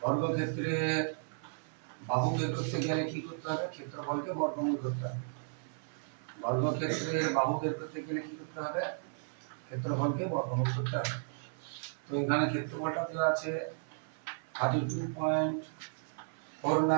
কি করতে হবে? ক্ষেত্রফলকে বর্গমূল করতে হবে। বর্গক্ষেত্রের বাহু বের করতে গেলে কি করতে হবে? ক্ষেত্রফলকে বর্গমূল করতে হবে। তো এখানে ক্ষেত্রফলটা দেওয়া আছে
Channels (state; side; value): silent; left; 55 dB below the other